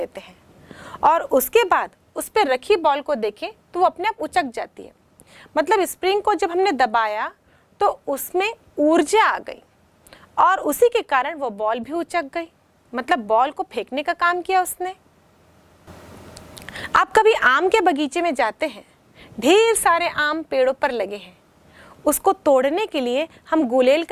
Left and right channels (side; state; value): both; identical; correlation 1.00